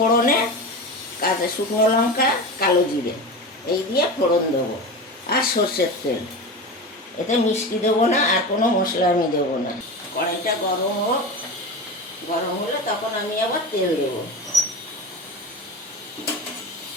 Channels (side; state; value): both; normal; correlation 0.26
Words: কাঁচা শুকনো লঙ্কা, কালো জিরে, এই দিয়ে ফোড়ন দেবো, আর সর্ষের তেল। এতে মিষ্টি দেবো না, আর কোনো মশলা আমি দেবো না। কড়াইটা গরম হোক, গরম হলে তখন আমি আবার তেল দেবো।